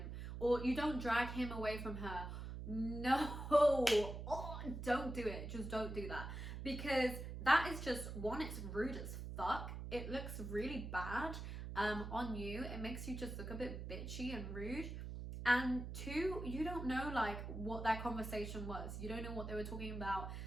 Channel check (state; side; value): noise; right; hum, 7 dB below the sound